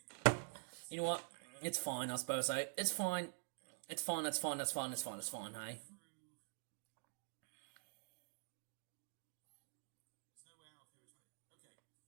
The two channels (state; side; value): silent; left; digital silence